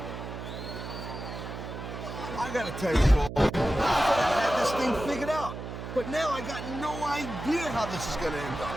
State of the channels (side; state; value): right; noise; hum, 8 dB below the sound